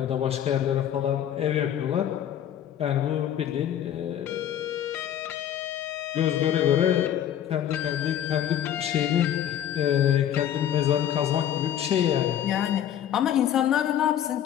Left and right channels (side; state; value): right; quieter; 10.4 dB